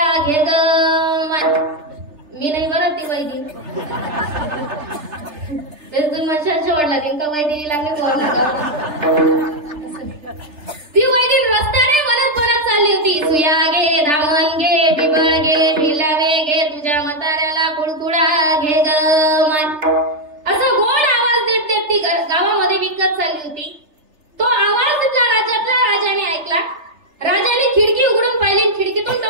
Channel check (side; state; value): left; late; 3.3 ms